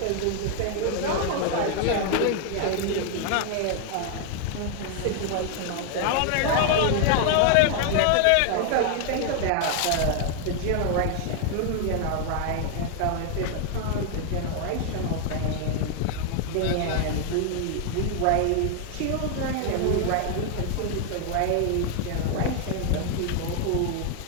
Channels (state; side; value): different; both; correlation 0.00